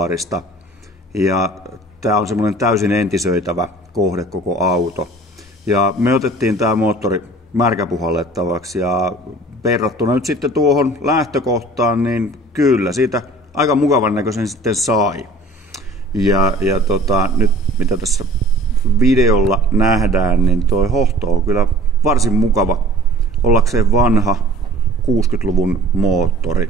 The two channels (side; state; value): both; normal; correlation 0.48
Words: Ja tämä on semmoinen täysin entisöitävä kohde koko auto. Ja me otettiin tämä moottori märkäpuhallettavaksi ja verrattuna nyt sitten tuohon lähtökohtaan, niin kyllä siitä aika mukavan näköisen sitten sai. Ja nyt mitä tässä videolla nähdään, niin toi hohto on kyllä varsin mukava ollakseen vanha 60-luvun